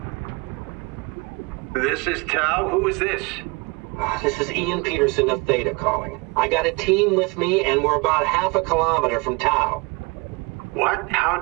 This is Tau. Who is this? This is Ian Peterson of Theta calling. I got a team with me, and we're about half a kilometer from Tau. What?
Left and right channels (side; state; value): left; quieter; 27.9 dB